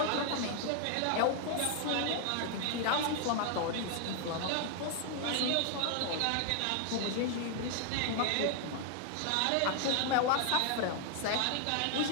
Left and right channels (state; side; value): different; both; correlation 0.00